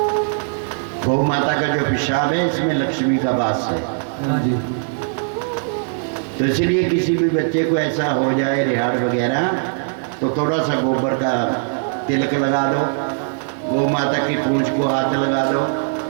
गौ माता का जो पेशाब है इसमें लक्ष्मी का वास है। तो इसलिए किसी भी बच्चे को ऐसा हो जाए रिहाड़ वगैरह तो थोड़ा सा गोबर का तिलक लगा दो, गौ माता की पूंछ को हाथ लगा दो,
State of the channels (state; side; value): silent; left; digital silence